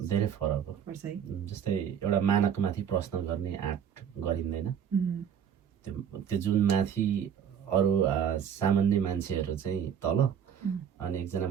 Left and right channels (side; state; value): left; quieter; 8.4 dB